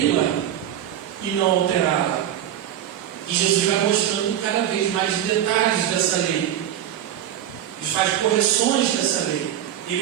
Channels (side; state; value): left; quieter; 10.9 dB